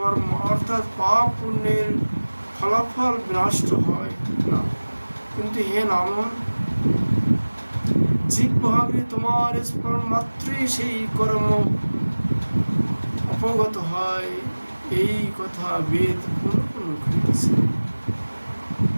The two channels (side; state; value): both; inverted; correlation -1.00